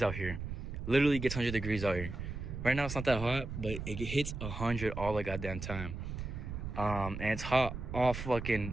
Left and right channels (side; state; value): right; noise; rumble, 6 dB below the sound